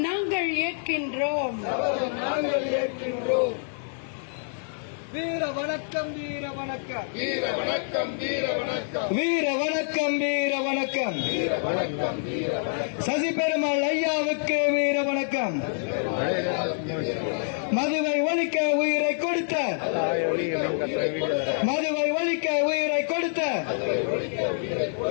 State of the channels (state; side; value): silent; right; digital silence